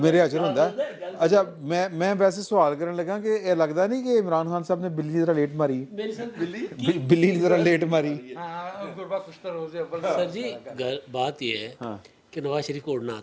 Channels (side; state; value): both; identical; correlation 1.00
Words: ہاتھ ہوندا ہے. اچھا میں ویسے سوال کرنے لگا کہ یہ لگتا نہیں کہ عمران خان صاحب نے بلی ذرا لیٹ ماری, بلی ذرا لیٹ ماری. سر جی بات یہ ہے کہ نواز شریف کو اڑنا